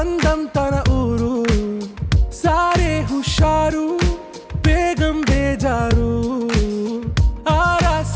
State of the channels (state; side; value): identical; both; correlation 1.00